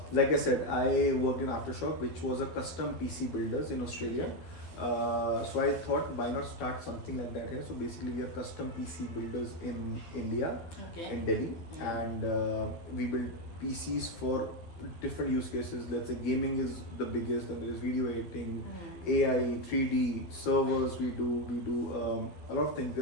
like I said, I worked in Aftershock, which was a custom PC builders in Australia. So I thought, why not start something like that here? So basically, we are custom PC builders in India, in Delhi, and we build PCs for different use cases. Let's say gaming is the biggest, and there is video editing, AI, 3D servers. We do a lot of things.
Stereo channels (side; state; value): right; late; 12 ms